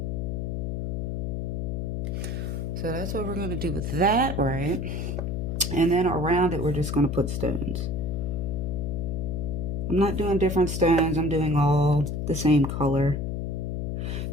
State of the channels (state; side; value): noise; left; hum, 2 dB below the sound